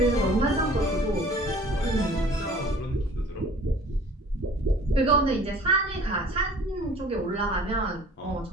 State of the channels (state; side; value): normal; both; correlation 0.49